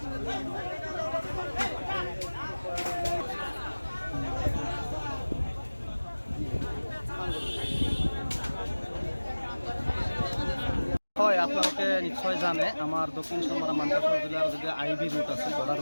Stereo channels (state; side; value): inverted; both; correlation -1.00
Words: হয় আপোনালোকে নিশ্চয় জানে আমাৰ দক্ষিণ চমৰা মানকাছৰ জিলাৰ যদি আইবি ৰুট আছে বৰ্ডাৰ